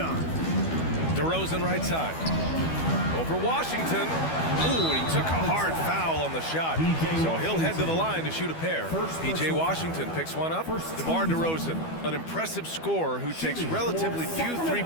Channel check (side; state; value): right; late; 12 ms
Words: DeRozan right side. Over Washington. Ooh, and he took a hard foul on the shot. So he'll head to the line to shoot a pair. P.J. Washington picks one up. DeMar DeRozan, an impressive scorer who takes relatively few